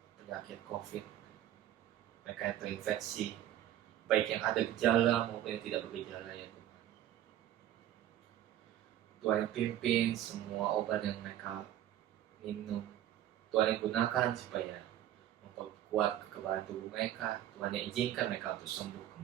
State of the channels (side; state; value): left; quieter; 12.2 dB